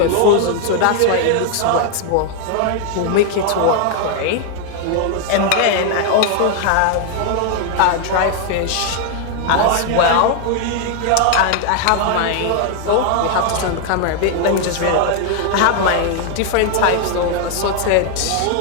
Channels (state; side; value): different; both; correlation 0.00